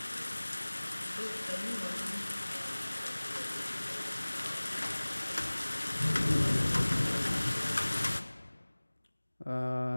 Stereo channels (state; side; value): inverted; both; correlation -1.00